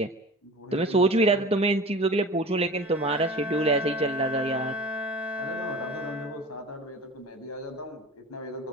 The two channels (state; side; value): normal; both; correlation 0.37